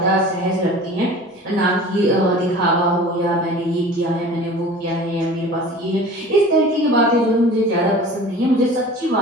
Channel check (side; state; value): both; normal; correlation 0.41